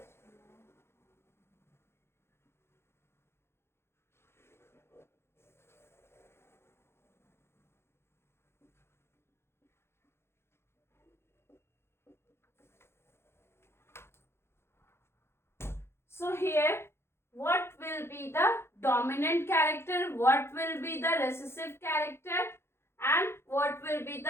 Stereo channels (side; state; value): right; late; 0.12 ms